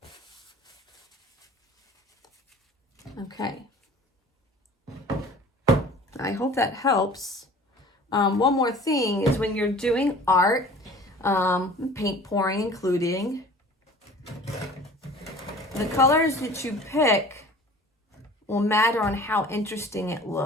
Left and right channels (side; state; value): both; normal; correlation 0.45